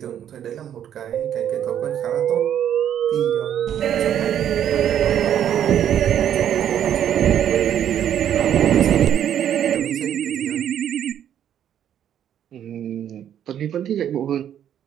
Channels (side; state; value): left; quieter; 10.0 dB